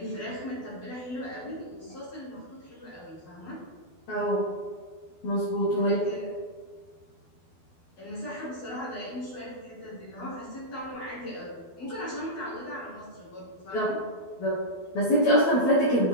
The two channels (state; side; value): late; right; 12 ms